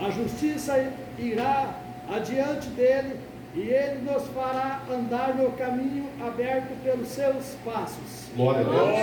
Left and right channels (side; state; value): both; identical; correlation 1.00